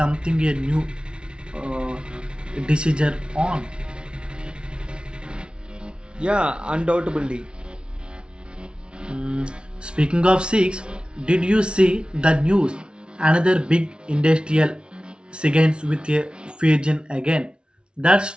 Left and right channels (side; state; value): left; late; 0.056 ms